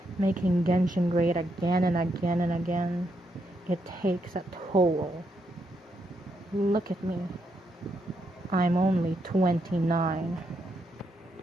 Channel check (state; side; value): normal; both; correlation 0.79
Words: Making Genshin great again and again and again. It takes a toll. Look at me. I'm only 29.